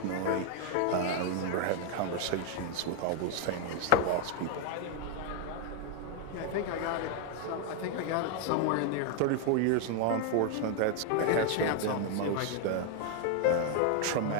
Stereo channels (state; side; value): different; both; correlation 0.00